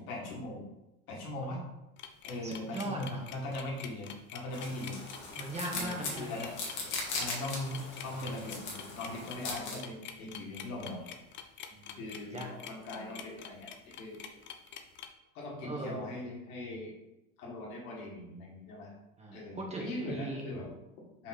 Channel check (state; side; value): normal; both; correlation 0.29